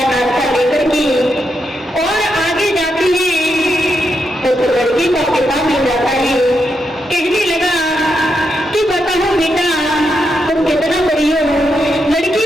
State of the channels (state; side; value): normal; both; correlation 0.83